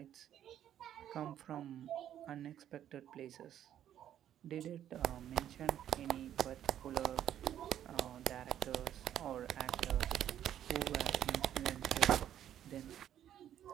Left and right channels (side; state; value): left; quieter; 10.8 dB